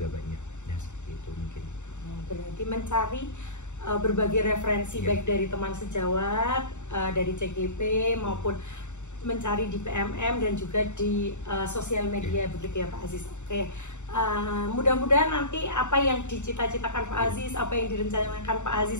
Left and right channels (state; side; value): late; right; 0.84 ms